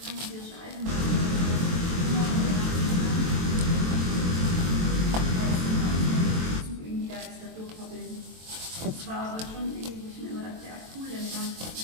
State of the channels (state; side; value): late; left; 23 ms